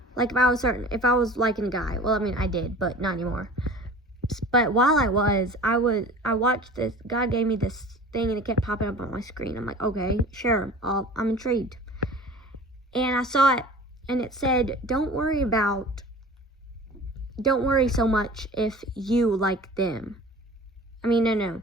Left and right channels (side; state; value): both; normal; correlation 0.41